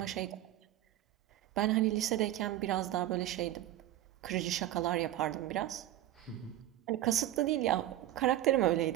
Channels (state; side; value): quieter; left; 13.8 dB